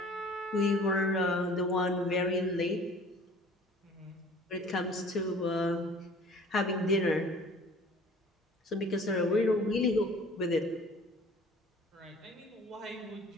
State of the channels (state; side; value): normal; both; correlation 0.49